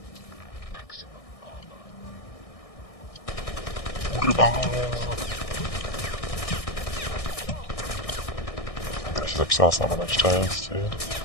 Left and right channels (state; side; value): late; right; 1.6 ms